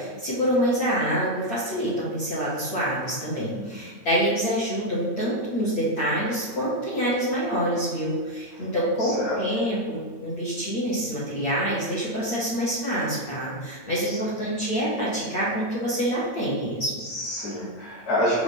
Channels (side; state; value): right; late; 8.7 ms